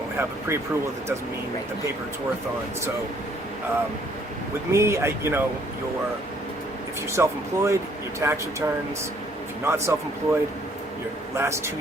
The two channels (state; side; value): normal; both; correlation 0.63